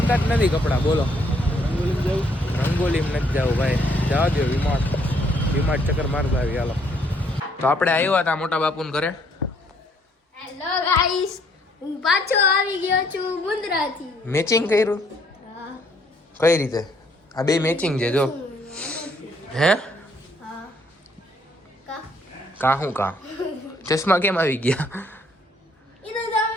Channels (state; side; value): normal; both; correlation 0.66